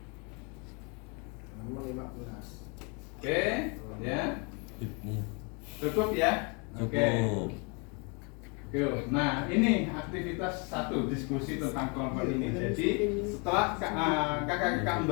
Oke, ya. Cukup ya? Oke. Nah, ini aktivitas 1, diskusi tentang kelompok ini. Jadi, setelah kakak-kakak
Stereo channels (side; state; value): right; quieter; 33.2 dB